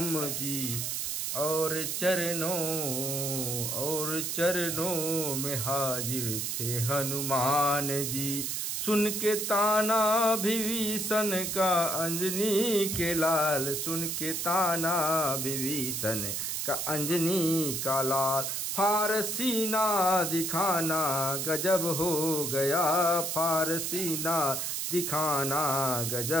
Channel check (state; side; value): noise; right; hiss, 2 dB below the sound